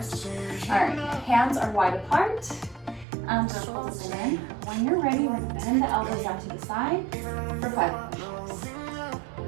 All right, hands are wide apart. Circles in. When you're ready, we're going to bend the elbows out to the side for 5 push-ups.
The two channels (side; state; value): left; drops out; at 3.1 s